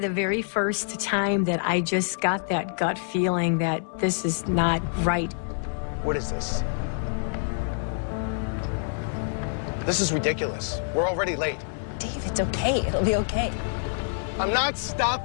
very first time that I just got that gut feeling that this is not right. What is this? This is ridiculous. We're already late. Dave, it's okay. It'll be okay. I'm not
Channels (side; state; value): right; silent; digital silence